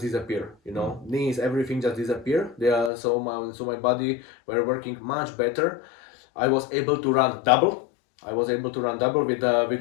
disappeared. Knees, everything just disappeared. So my body were working much better. I was able to run double.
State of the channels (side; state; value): right; drops out; at 2.9 s